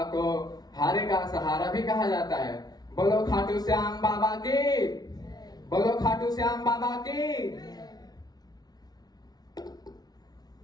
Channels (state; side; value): late; right; 0.19 ms